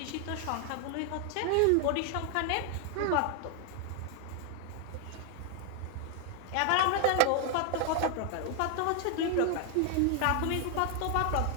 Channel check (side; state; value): both; different; correlation 0.00